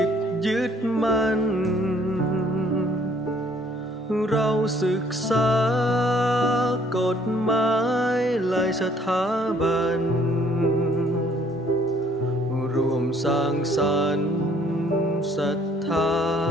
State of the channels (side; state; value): both; normal; correlation 0.61